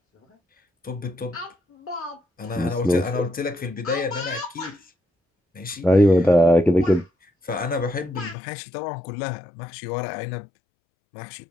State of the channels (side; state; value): right; drops out; at 8.3 s